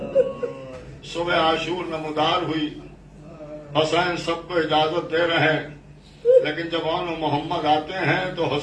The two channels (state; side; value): identical; both; correlation 1.00